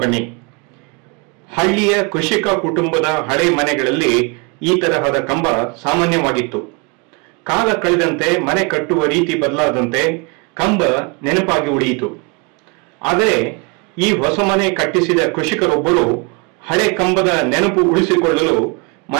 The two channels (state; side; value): quieter; left; 30.8 dB